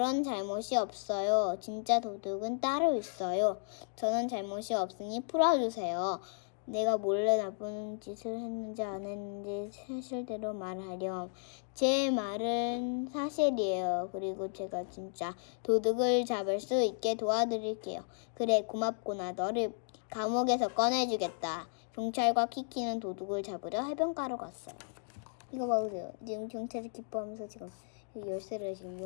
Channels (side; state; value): right; silent; digital silence